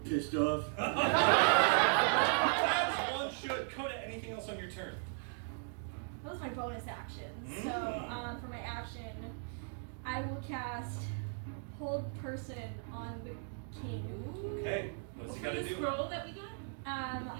off. As one should. Coda, anything else on your turn? That was my bonus action. Mm. So for my action, I will cast Hold Person on the king. Okay. What's he got to The do? scroll that we got?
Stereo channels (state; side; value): silent; left; 53 dB below the other